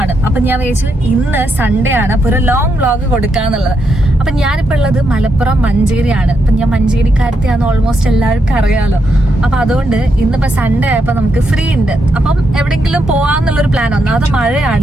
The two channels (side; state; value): both; normal; correlation 0.81